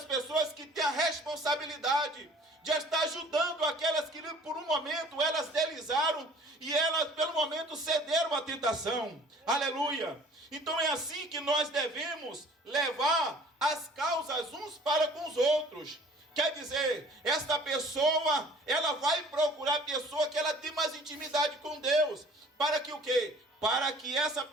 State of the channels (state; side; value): normal; both; correlation 0.51